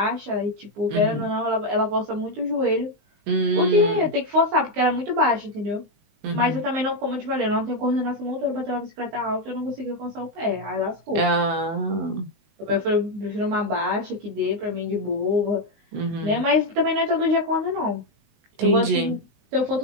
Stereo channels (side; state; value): left; late; 19 ms